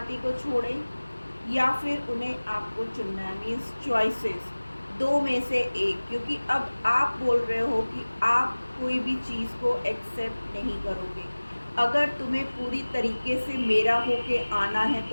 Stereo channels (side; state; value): both; inverted; correlation -1.00